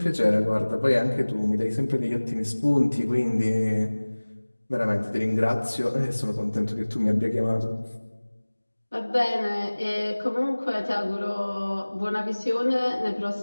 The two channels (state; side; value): inverted; both; correlation -1.00